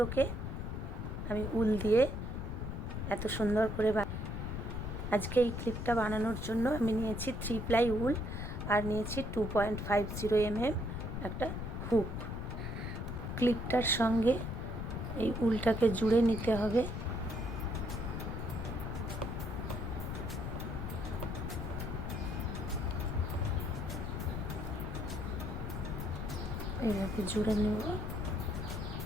আমি উল দিয়ে এত সুন্দর করে আজকে এই ক্লিপটা বানানোর জন্য আমি নিয়েছি 3 প্লাই উল আর নিয়েছি 2.50 mm একটা হুক। ক্লিপটার সঙ্গে এই উলটাকে জুড়ে নিতে হবে। এইভাবে জুড়ে নেব।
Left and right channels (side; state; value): left; noise; rumble, 4 dB below the sound